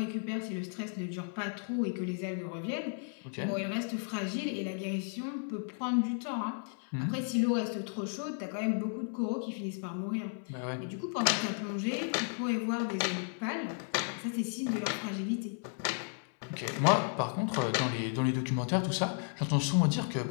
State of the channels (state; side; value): silent; right; 55 dB below the other